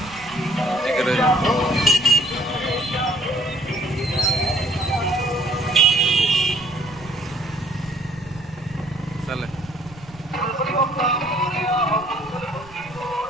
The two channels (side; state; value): right; noise; rumble, 21 dB below the sound